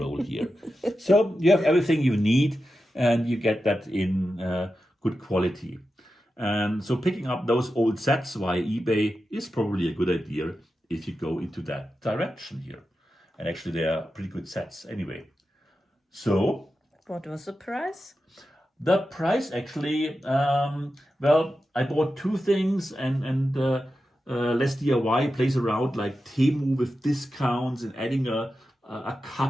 here. So you have everything you need, and you get that in good quality. And so picking up those old sets via eBay is probably a good idea if you go into that direction here. And actually, they are pretty good sets anyway. So what was the price? The price actually, well, I bought 2 things, and Less DIY plays around like Temu with discounts and adding a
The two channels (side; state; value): both; normal; correlation 0.91